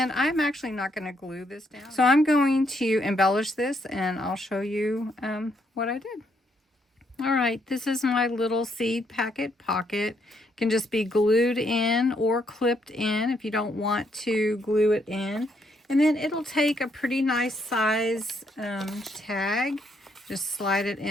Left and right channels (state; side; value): normal; both; correlation 0.74